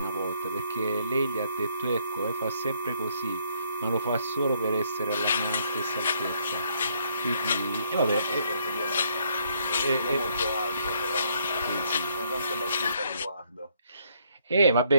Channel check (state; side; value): inverted; both; correlation -0.69